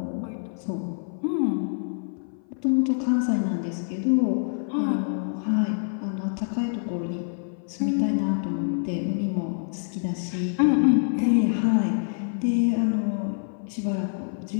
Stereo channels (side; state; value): right; silent; 57 dB below the other